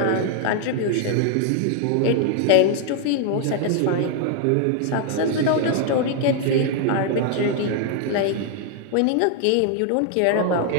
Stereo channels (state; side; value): different; both; correlation 0.00